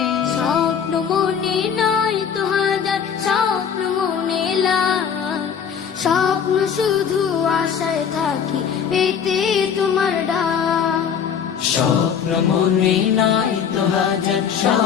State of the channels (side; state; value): right; quieter; 7.5 dB